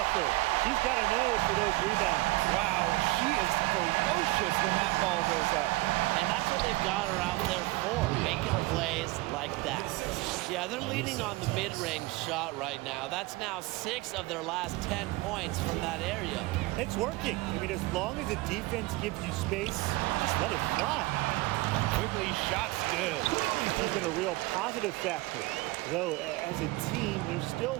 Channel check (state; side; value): quieter; left; 20.9 dB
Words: She's got a nose for those rebounds. Wow, she is ferocious when that ball goes up. And that's what they've got her out there for, making plays like that. Yeah, they're leaning on the mid-range shot right now. That's now 6 of their last 10 points from that area. It's working. I mean, as long as the defense gives you space, just let it fly. Quigley shot's good. She's been a real positive factor. Though, as a team, they're still